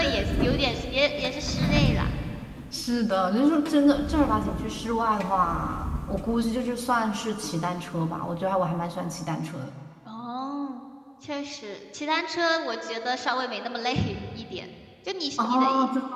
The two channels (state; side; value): identical; both; correlation 1.00